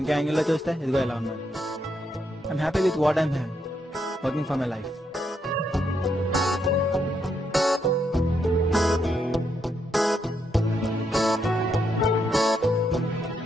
ఇంకో యాంగిల్ లో చూస్తే ఇదిగో ఎలా ఉన్నాను. I'm happy with what I'm working for my life.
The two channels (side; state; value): both; normal; correlation 0.78